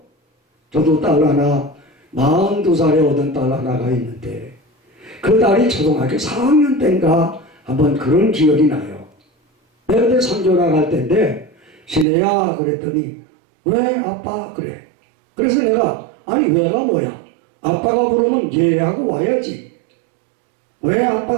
저도 딸 하나, 42살에 얻은 딸 하나가 있는데 그 딸이 초등학교 4학년 때인가 한번 그런 기억이 나요. 내가 그때 선교 나갈 때인데 신혜야 그랬더니 왜 아빠 그래. 그래서 내가 아니 왜가 뭐야. 아빠가 부르면 예하고 와야지. 왜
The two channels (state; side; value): drops out; left; at 12.1 s